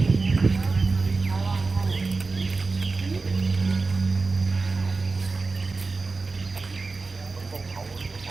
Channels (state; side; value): quieter; left; 4.0 dB